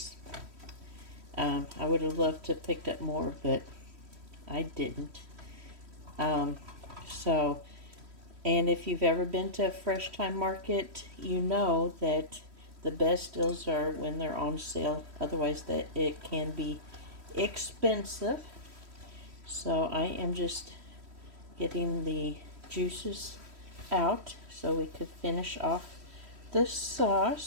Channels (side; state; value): left; late; 3.1 ms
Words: I would have loved to have picked up more, but I didn't. And if you've ever been to a fresh time market, you know that the best deals are when they're on sale. Otherwise, that it can be expensive. So I am just getting the juices out so we could finish off the